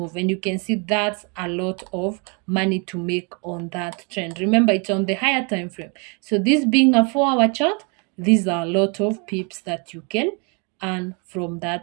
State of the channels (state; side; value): quieter; left; 34.3 dB